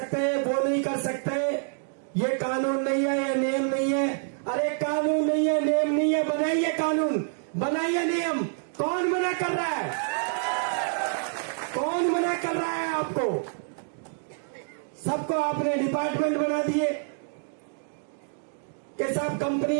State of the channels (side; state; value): left; silent; digital silence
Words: वो नहीं कर सकते, ये कानून नहीं है, ये नियम नहीं है। अरे कानून नहीं है, नियम नहीं है, बनाइए कानून, बनाइए नियम। कौन मना कर रहा है? कौन मना कर रहा है आपको? सबको आपने डिपार्टमेंट बना दिए कि साहब कंपनी